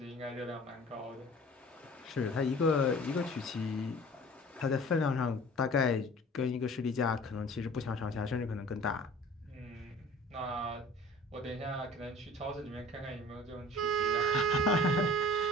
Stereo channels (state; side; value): normal; both; correlation 0.46